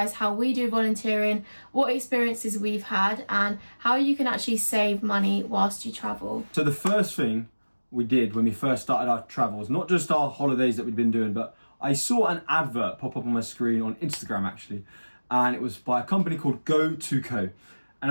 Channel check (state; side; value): inverted; both; correlation -1.00